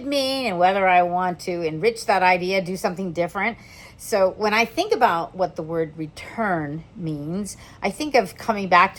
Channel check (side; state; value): both; identical; correlation 1.00